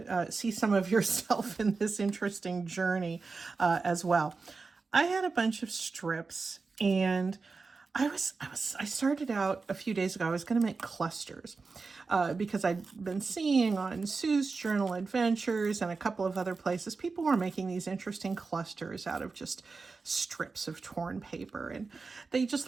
see some of yourself in this interesting journey as well. I had a bunch of strips and I started out a few days ago. I was going to make clusters because I'd been seeing on Sue's Journal Adventures and a couple of other places, people were making these interesting clusters out of just strips of torn paper, and they just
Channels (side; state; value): left; quieter; 4.3 dB